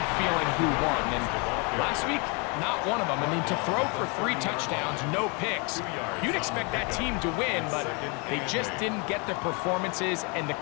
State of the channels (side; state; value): right; quieter; 32.3 dB